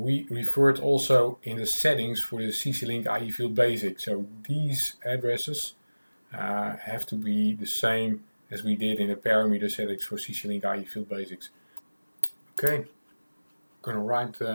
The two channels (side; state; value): both; inverted; correlation -1.00